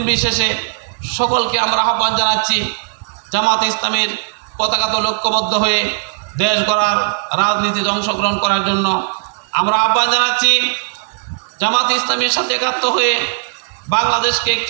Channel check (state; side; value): silent; left; digital silence